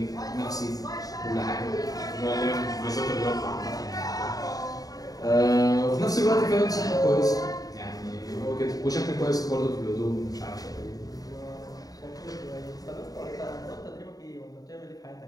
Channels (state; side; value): late; right; 0.18 ms